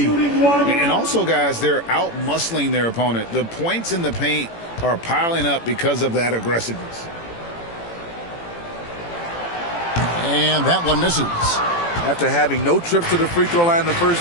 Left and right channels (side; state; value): right; late; 18 ms